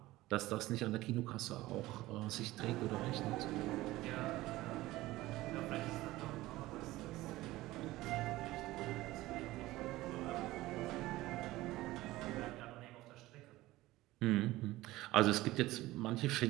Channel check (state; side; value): quieter; left; 17.7 dB